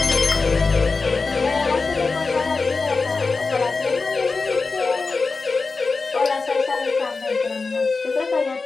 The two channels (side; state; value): right; quieter; 4.2 dB